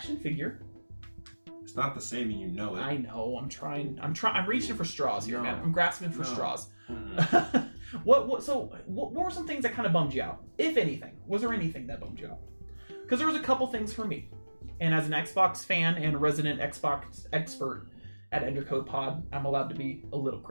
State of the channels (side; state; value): both; inverted; correlation -1.00